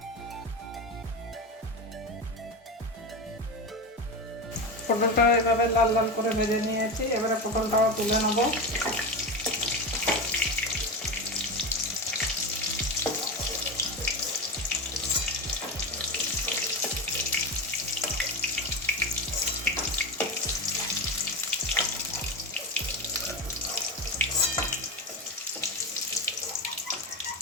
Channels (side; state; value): both; normal; correlation 0.20